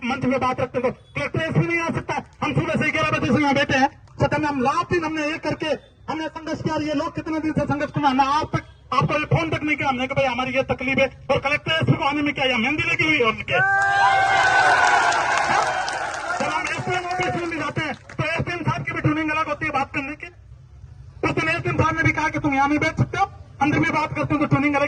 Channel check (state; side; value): identical; both; correlation 1.00